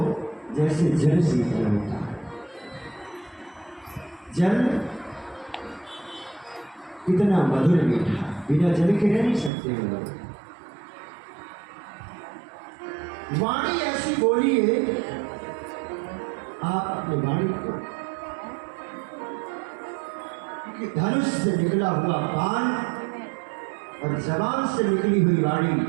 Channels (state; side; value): drops out; left; at 9.5 s